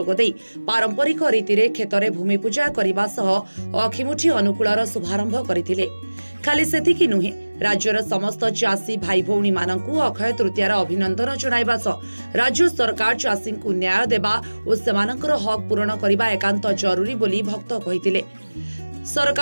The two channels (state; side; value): inverted; both; correlation -1.00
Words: पारंपरिक रीति क्षेत्र भूमि पूजा करने सह अखिमुठी अनुकूलर शुभारंभ करथिले। खाली सेतिकी नुहे, राज्यर समस्त चाषी भाई भौणी मानकु अक्षय तृतीयार अभिनंदन जणाइबा सह राज्य सरकार चाषी को न्याय देबा और सेमानकर हक पूरण करबा एकांत जरूरी बोली भक्त कहिथिले।